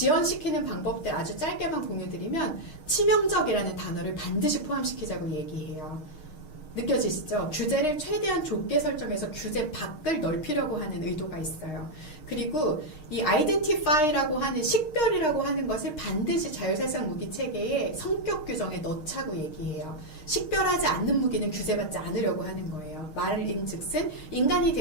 방법들 아주 짧게만 공유드리면 치명적이라는 단어를 반드시 포함시키자고 얘기해요. 느껴지시죠? 규제를 최대한 좁게 설정해서 규제 밖을 넓히려고 하는 의도가 있어요. 그리고 이 identify라고 하는 식별이라고 하는 것을 반드시 자율살상 무기 체계의 성격 규정에 넣자고 얘기해요. 식별하지 않는 무기는 규제받지 않으려고 하는 거예요. 말인즉슨 인간이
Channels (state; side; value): late; right; 6.4 ms